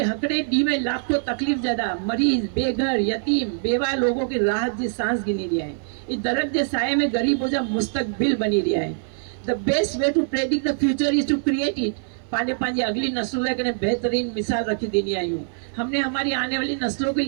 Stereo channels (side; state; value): left; silent; 63 dB below the other